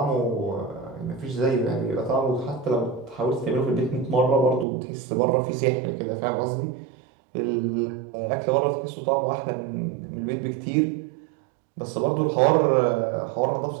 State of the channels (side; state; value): left; drops out; at 4.7 s